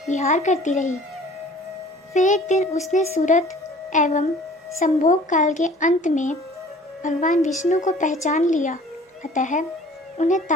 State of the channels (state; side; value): normal; both; correlation 0.49